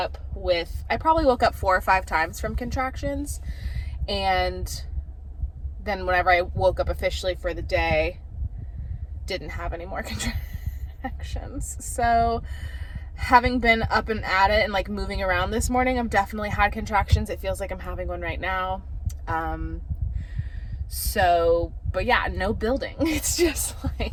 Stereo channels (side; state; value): both; identical; correlation 1.00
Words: I probably woke up 4 or 5 times from contractions. And then whenever I woke up officially for the day, didn't have any more contractions. So having been up and at it and moving around this morning, I've definitely had contractions. It feels like I'm having one right now. But yeah, no building. It's just